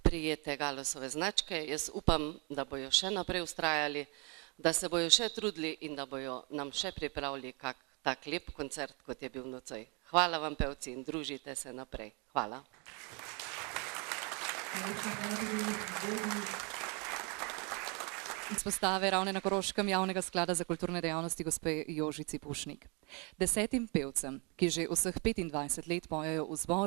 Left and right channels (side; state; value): left; quieter; 32.3 dB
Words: Galosove značke. Jaz upam, da bojo še naprej vztrajali, da se bojo še trudili in da bojo nam še pripravili kak tak lep koncert, kot je bil nocoj. Hvala vam, pevci, in družite se naprej. Hvala. Izpostave Ravne na Koroškem javnega sklada za kulturne dejavnosti gospe Jožici Pušnik. 10 pevcem, ki že vseh 25 let pojejo v